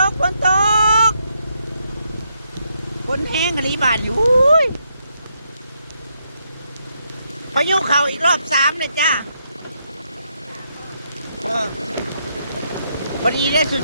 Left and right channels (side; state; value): both; inverted; correlation -0.78